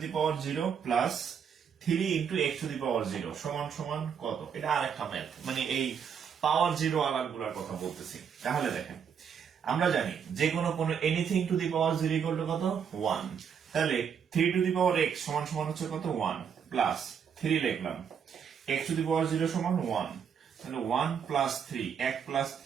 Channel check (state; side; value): quieter; left; 7.4 dB